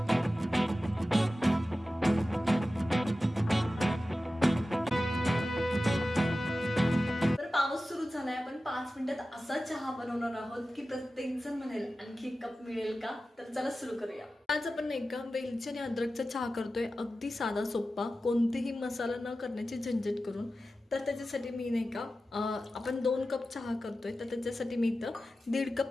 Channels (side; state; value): both; normal; correlation 0.94